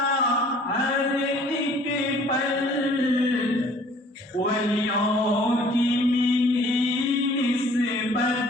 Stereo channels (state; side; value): normal; both; correlation 0.54